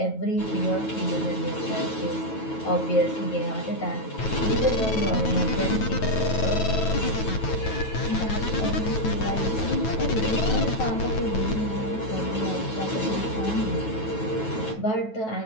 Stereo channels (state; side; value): late; right; 9.2 ms